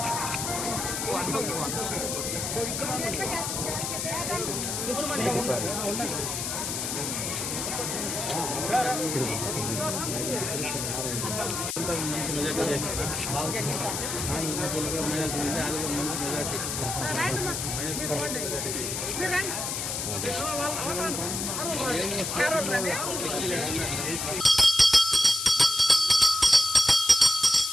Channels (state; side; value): noise; left; hiss, 3 dB below the sound